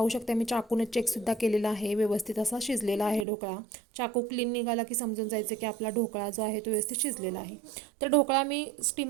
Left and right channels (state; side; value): drops out; left; at 3.2 s